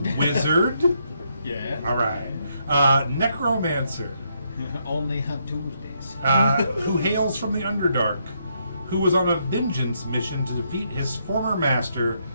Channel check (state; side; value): inverted; both; correlation -0.76